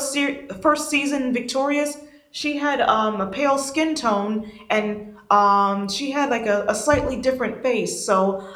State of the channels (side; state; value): both; identical; correlation 1.00